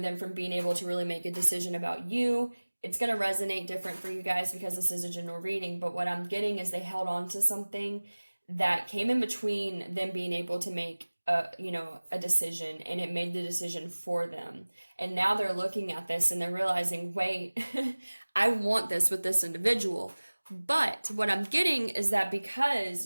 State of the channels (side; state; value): both; inverted; correlation -1.00